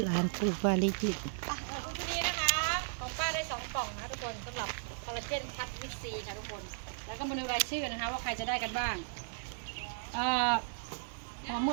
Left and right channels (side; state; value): left; silent; 54 dB below the other